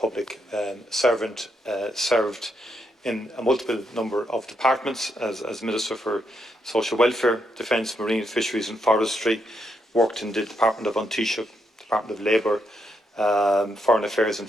servant, served in a multiple number of departments as Minister for Social Welfare, Defence, Marine, Fisheries and Forestry, worked in the Department of Taoiseach, Department of Labour, Foreign Affairs and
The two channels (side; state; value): both; normal; correlation 0.78